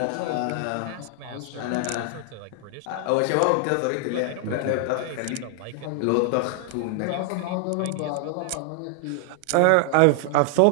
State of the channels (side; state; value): both; different; correlation 0.00